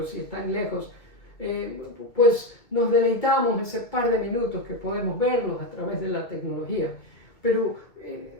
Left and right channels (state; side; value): late; right; 2.0 ms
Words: y están lejos, pues nos deleitamos ese par de minutos que podemos verlos a través de la tecnología. Pero